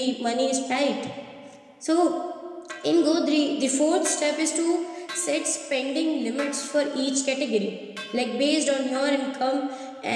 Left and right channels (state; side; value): identical; both; correlation 1.00